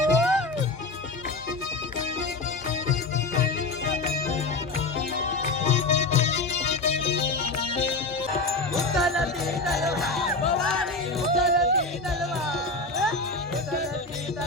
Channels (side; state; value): right; quieter; 3.3 dB